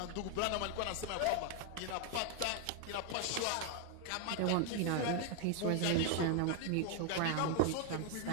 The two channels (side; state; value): both; different; correlation 0.01